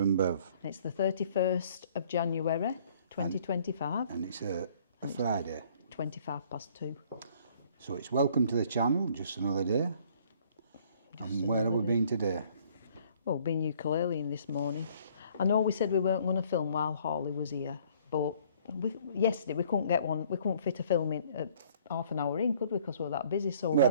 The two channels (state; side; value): inverted; both; correlation -0.59